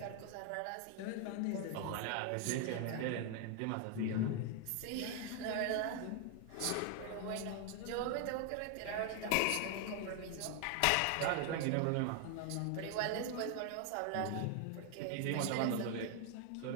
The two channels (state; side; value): different; both; correlation 0.00